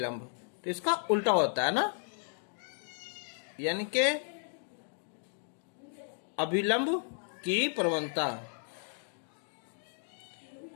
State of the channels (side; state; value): right; silent; digital silence